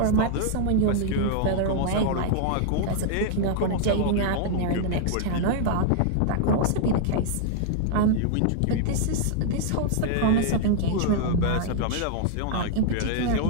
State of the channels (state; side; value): different; both; correlation 0.00